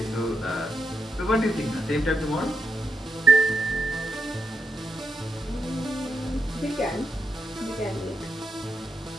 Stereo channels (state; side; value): normal; both; correlation 0.83